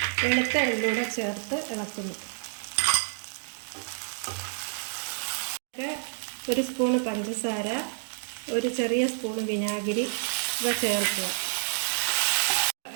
വെളുത്ത എള്ളൂടെ ചേർത്ത് ഇളക്കുന്നു. 1 സ്പൂണ് പഞ്ചസാര, 1 ചെറിയ സ്പൂണ് വിനാഗിരി ഇവ ചേർക്കുക.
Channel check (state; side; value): silent; left; digital silence